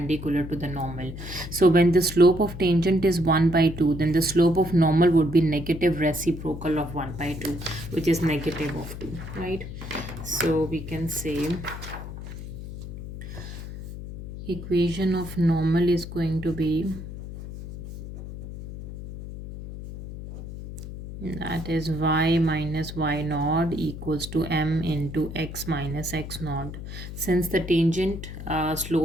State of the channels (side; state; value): left; noise; hum, 10 dB below the sound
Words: to the normal. So when the slope of tangent is 1 by 2, then the slope of normal would be negative reciprocal of 1 by 2, which is negative of 2, right? So we can say equation of normal is going to be, that is y minus y naught equals to m into x minus x naught. Since the tangent